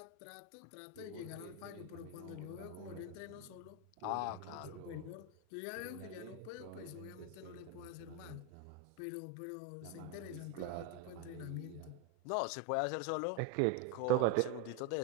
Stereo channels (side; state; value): both; different; correlation 0.02